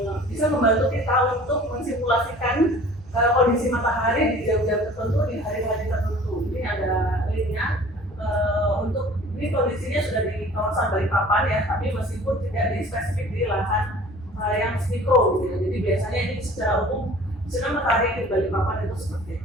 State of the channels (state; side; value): normal; both; correlation 0.47